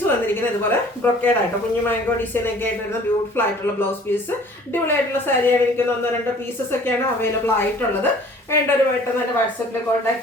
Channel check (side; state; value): both; normal; correlation 0.51